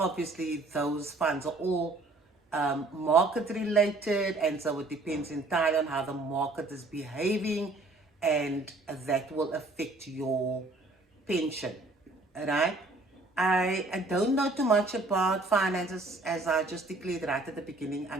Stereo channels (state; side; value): quieter; left; 3.1 dB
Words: those funds are all market related, and so it depends entirely on how the market is behaving, and that will affect your pension. Right? I don't know too much about finances, as I just declared right at the beginning.